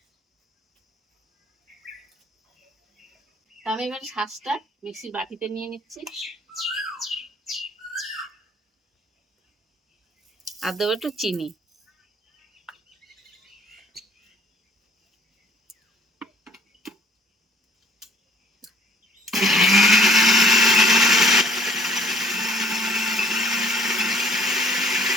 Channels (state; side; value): normal; both; correlation 0.56